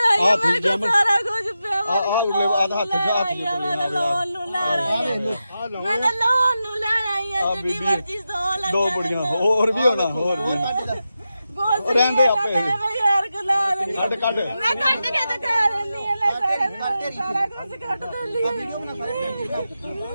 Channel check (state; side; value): inverted; both; correlation -0.90